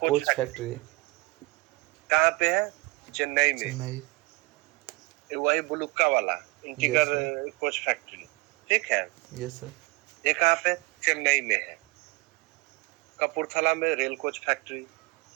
coach factory factory कहाँ पे है, चेन्नई में, चेन्नई। वही बुलुक्का वाला इंटीगर Yes, कोच फैक्ट्री, ठीक है। यस सर। ये कहाँ पे, चेन्नई में है। कपूरथला में रेल कोच फैक्ट्री,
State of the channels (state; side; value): quieter; left; 25.0 dB